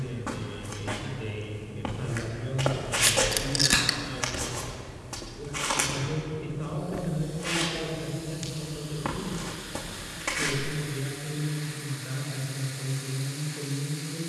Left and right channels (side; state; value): both; identical; correlation 1.00